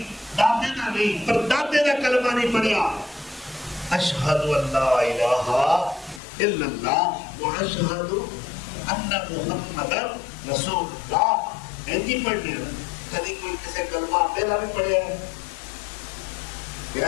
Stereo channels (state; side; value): drops out; right; at 6.2 s